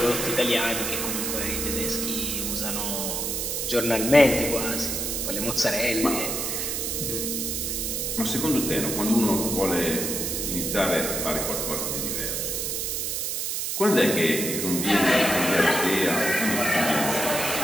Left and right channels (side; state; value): right; noise; hiss, 1 dB below the sound